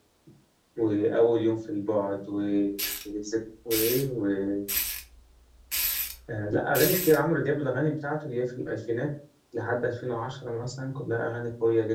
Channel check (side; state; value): both; identical; correlation 1.00